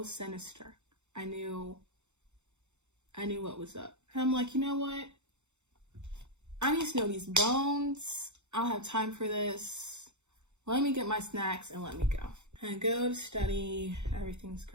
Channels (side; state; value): left; late; 0.83 ms